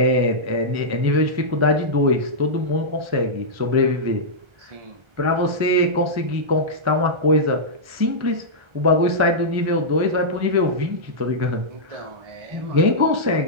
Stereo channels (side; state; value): left; late; 1.3 ms